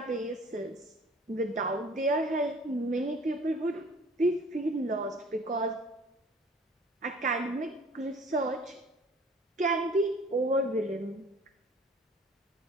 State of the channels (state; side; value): normal; both; correlation 0.50